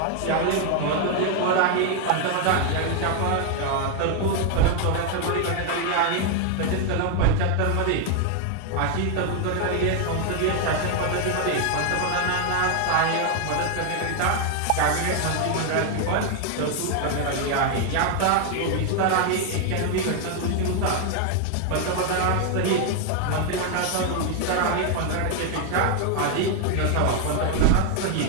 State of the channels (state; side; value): different; both; correlation 0.01